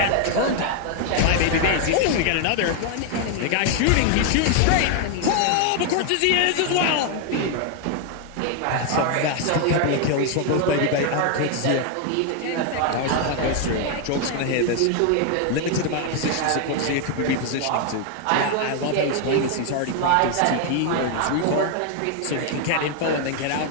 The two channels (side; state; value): both; different; correlation 0.00